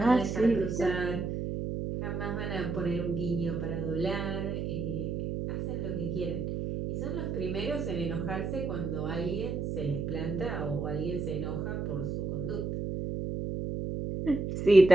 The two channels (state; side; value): noise; right; hum, 2 dB below the sound